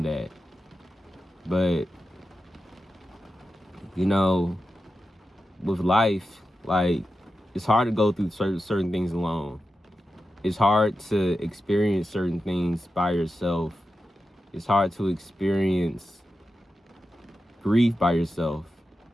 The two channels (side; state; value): both; normal; correlation 0.91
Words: that. But with life, like, it's hard to go through certain things alone. It's hard to experience certain things by yourself. It's hard to experience grief by yourself.